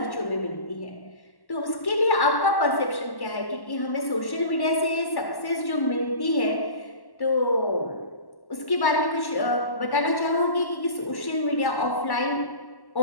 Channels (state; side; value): late; right; 1.1 ms